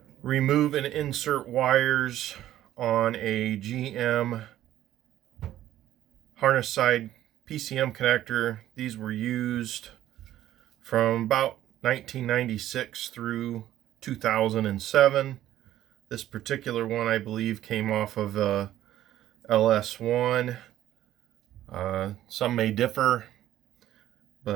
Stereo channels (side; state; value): left; quieter; 13.0 dB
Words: remove and insert wires on a GM harness side PCM connector. These were used from about 1996 through 2007. This particular one, I believe, came off of LS1. Some may differ,